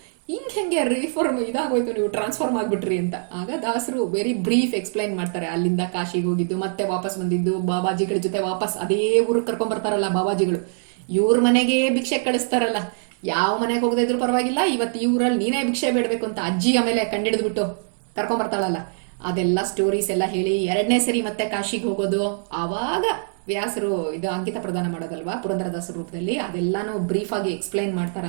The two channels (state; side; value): silent; left; 63 dB below the other